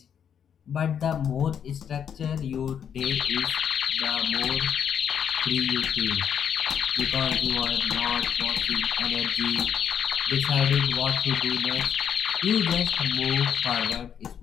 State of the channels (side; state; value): right; quieter; 8.2 dB